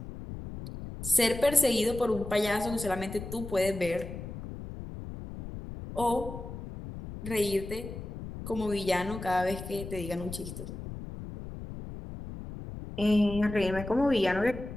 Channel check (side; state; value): left; noise; rumble, 10 dB below the sound